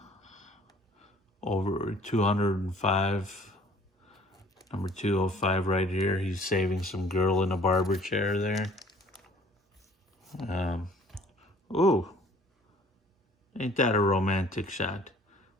Over 205. Number 205 right here. He's saving some girl in a barber chair there. Ooh. Ain't that a romantic shot?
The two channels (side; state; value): both; normal; correlation 0.54